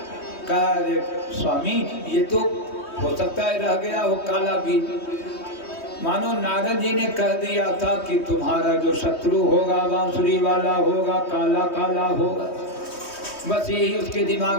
कहा अरे स्वामी, ये तो हो सकता है रह गया हो काला बीज। मानो नारद जी ने कह दिया था कि तुम्हारा जो शत्रु होगा बांसुरी वाला होगा, काला काला होगा। बस यही उसके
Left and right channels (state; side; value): late; right; 3.2 ms